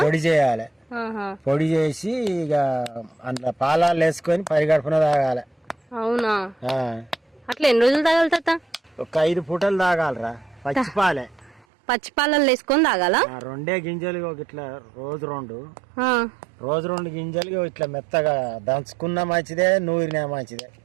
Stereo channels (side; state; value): left; drops out; at 11.7 s